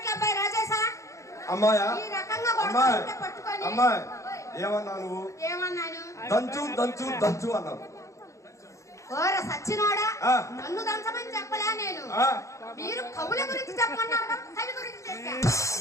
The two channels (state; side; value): late; right; 0.15 ms